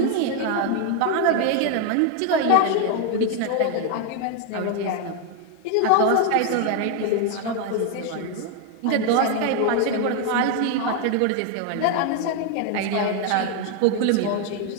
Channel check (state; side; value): different; both; correlation 0.01